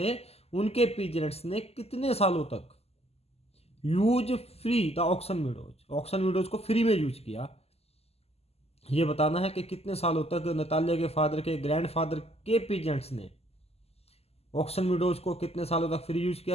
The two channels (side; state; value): right; late; 0.29 ms